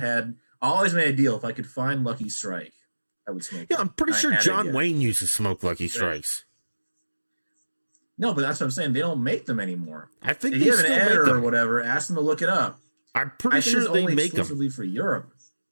always made a deal. If I could find Lucky Strike, I would smoke. Yeah, I'm pretty I sure had to John get it. Wayne used to smoke Lucky Strikes. No, but that's what I'm saying. They don't make them anymore. I think If they you have an still make editor or them. whatever, ask them to look it up. I'm I pretty think sure it's they only make them. exclusively for Europe.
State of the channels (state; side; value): inverted; both; correlation -1.00